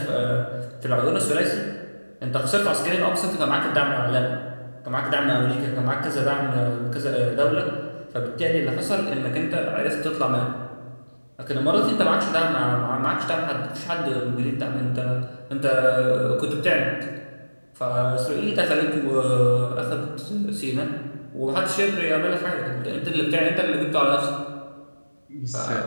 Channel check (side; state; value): both; inverted; correlation -1.00